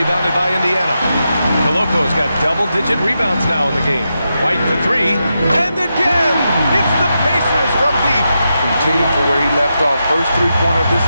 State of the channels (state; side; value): inverted; both; correlation -0.87